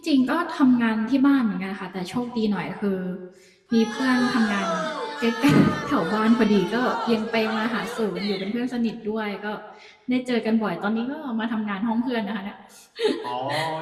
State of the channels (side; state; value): both; identical; correlation 1.00